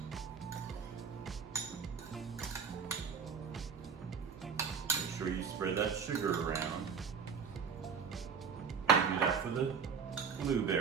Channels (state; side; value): quieter; left; 6.4 dB